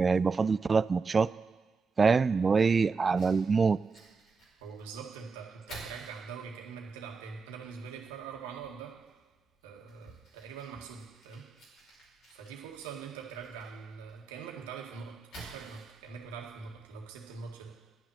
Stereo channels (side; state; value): left; quieter; 4.7 dB